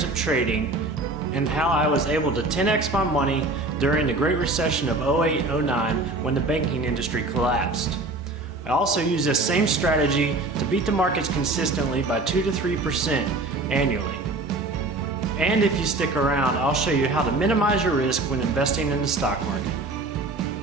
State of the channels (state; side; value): quieter; left; 3.1 dB